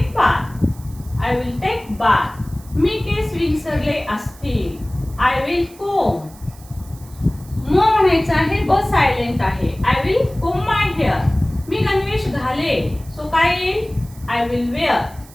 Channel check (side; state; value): right; noise; hiss, 23 dB below the sound